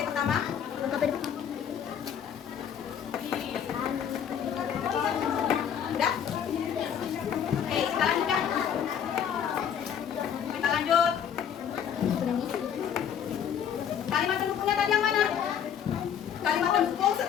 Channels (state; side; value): quieter; right; 8.6 dB